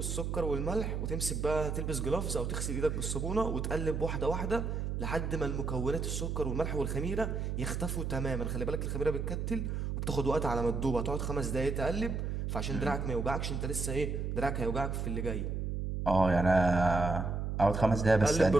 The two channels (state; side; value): noise; right; hum, 2 dB below the sound